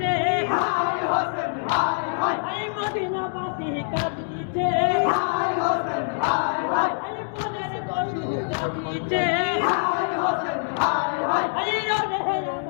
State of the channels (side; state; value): right; silent; digital silence